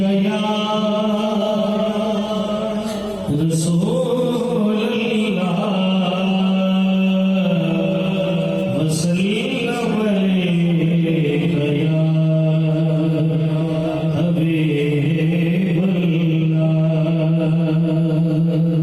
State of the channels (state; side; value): identical; both; correlation 1.00